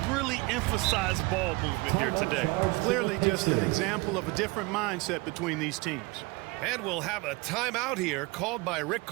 really emphasized ball movement here today. Clearly just an example of a different mindset between these teams. And we'll have a timeout here called by Rick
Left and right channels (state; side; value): quieter; left; 24.5 dB